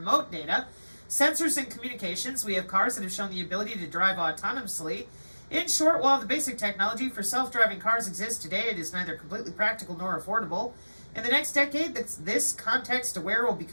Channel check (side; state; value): both; inverted; correlation -1.00